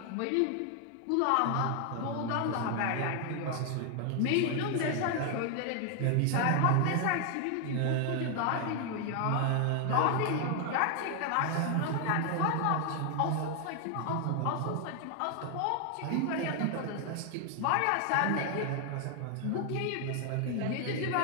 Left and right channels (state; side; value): different; both; correlation 0.00